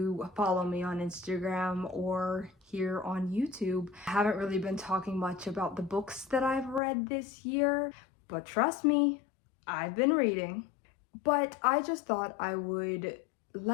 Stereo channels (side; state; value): right; drops out; at 6.8 s